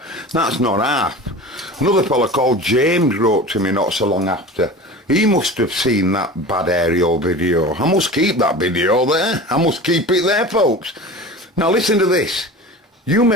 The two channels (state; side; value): normal; both; correlation 0.35